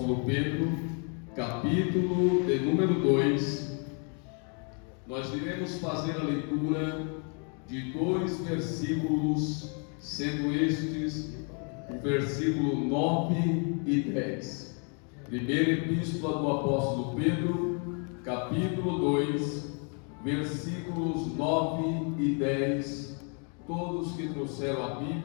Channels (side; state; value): right; quieter; 39.7 dB